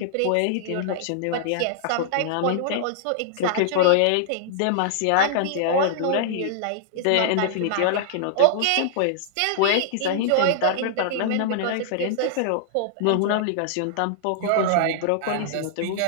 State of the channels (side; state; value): both; different; correlation -0.01